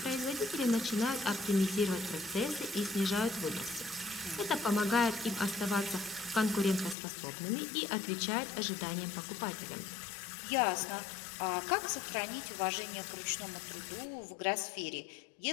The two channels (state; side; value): drops out; right; at 7.0 s